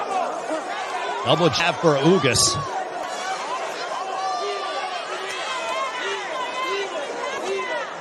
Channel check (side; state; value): both; identical; correlation 1.00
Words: Double jab for Ugas.